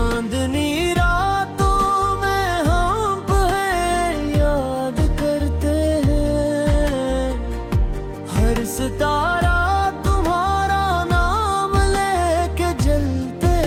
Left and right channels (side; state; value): both; identical; correlation 1.00